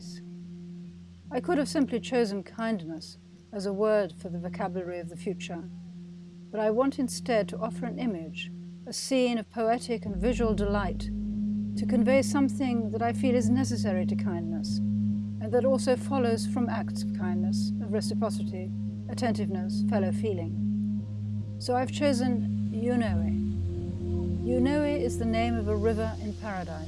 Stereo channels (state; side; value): identical; both; correlation 1.00